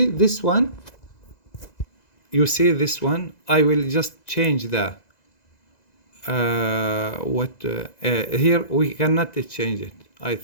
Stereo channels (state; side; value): late; right; 2.0 ms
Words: this one? You see this one? I will just change the here we cannot change it, I